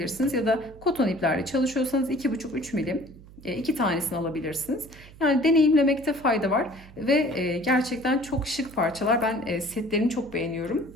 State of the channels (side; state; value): right; noise; hum, 20 dB below the sound